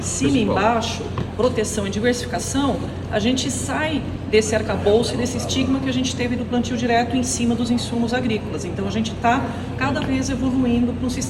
cima e embaixo, proteção e diversificação, a gente sai desse arcabouço e desse estigma que a gente teve do plantio direto em cima dos insumos agrícolas. Então a gente está cada vez evoluindo para um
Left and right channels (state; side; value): identical; both; correlation 1.00